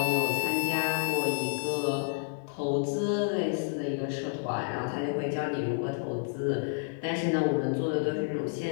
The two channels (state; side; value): silent; right; 58 dB below the other